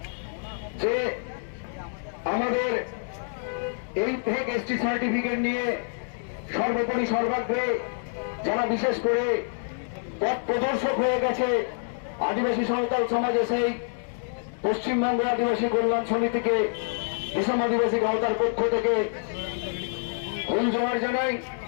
যে আমাদের এই ফেক এসটি সার্টিফিকেট নিয়ে সর্বোপরি সর্বাগ্রে যারা বিশেষ করে পথ প্রদর্শক হয়ে গেছে আদিবাসী সাঁওতাল সমাজে, সেই পশ্চিমবঙ্গ আদিবাসী কল্যাণ সমিতিকে বিশম আদিবাসী গাঁওতার পক্ষ থেকে ফুল জোহার জানাই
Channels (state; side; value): silent; right; digital silence